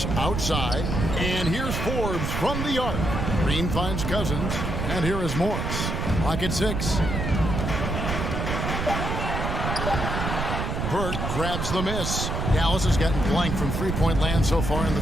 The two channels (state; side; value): noise; right; rumble, 2 dB below the sound